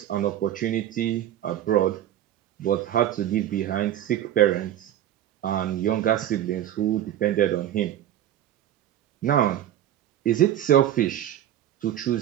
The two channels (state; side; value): quieter; left; 11.7 dB